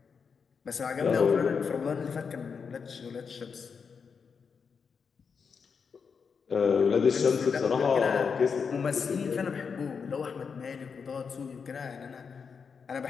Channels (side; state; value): right; quieter; 5.9 dB